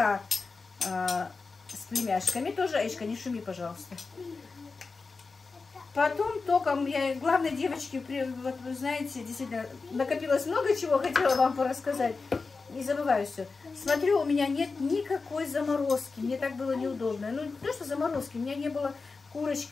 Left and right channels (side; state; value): right; quieter; 4.3 dB